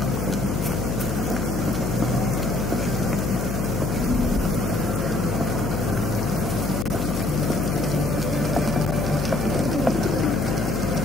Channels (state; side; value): noise; left; hum, 2 dB below the sound